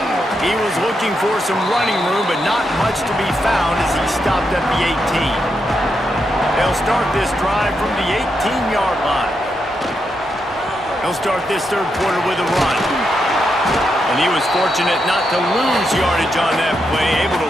He was looking for some running room, but not much to be found as he stopped at the 18. They'll start this drive from the 18-yard line. He'll start this third quarter with a run. And he was fortunate not to lose yardage on that play, able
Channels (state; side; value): normal; both; correlation 0.83